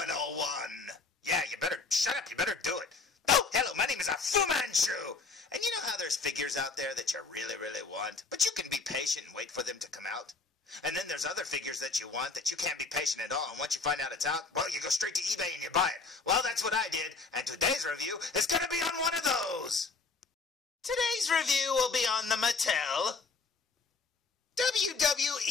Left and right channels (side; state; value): right; quieter; 4.2 dB